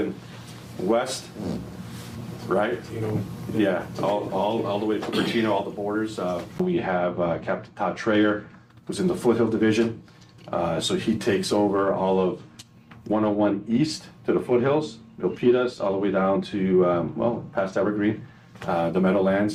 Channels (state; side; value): identical; both; correlation 1.00